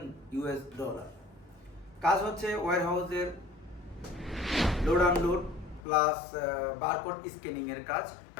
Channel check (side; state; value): right; drops out; at 5.9 s